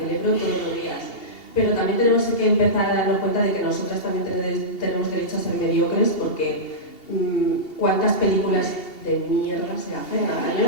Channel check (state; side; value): late; right; 2.7 ms